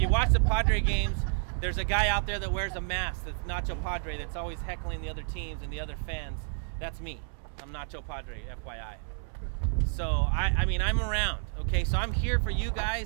watch the Padre games, there's a guy out there that wears a mask that's Nacho Padre that's always heckling the other teams and the other fans. That's me. I'm Nacho Padre, FYI. So, I'm around, okay? So I'm here for you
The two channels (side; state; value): left; silent; 58 dB below the other